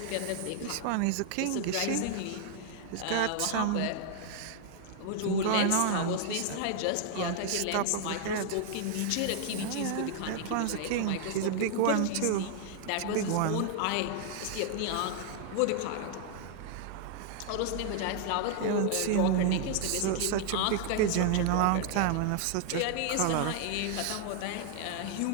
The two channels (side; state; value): both; different; correlation 0.00